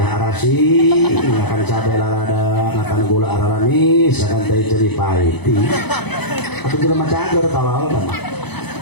arasi, ngakan cabai lalada, ngakan gula araranis, ngakan teh ceri pahiti. Atau juga macam agar tawal kan?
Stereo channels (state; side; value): late; right; 0.98 ms